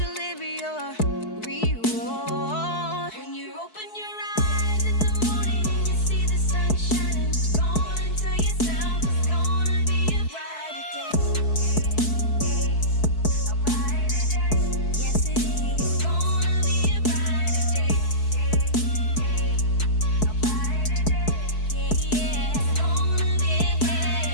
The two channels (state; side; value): late; right; 4.6 ms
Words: your reward. When you open your eyes in the morning and you see the sun shining, go on and tell yourself it's gonna be a brighter day. A brighter day. Yes, it is. It's gonna be a brighter day. A brighter day. Yeah, yeah. It's gonna be a